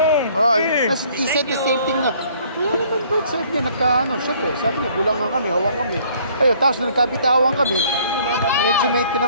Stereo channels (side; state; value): both; inverted; correlation -0.59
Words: Tapos he said the same thing na, wala naman bro, sabi niya, syempre, sabi niya, bulangan kami, hawang kami. Ayun, tapos nagkabitawan kami, medyo may